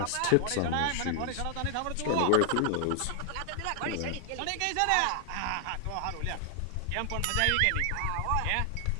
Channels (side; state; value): both; different; correlation 0.00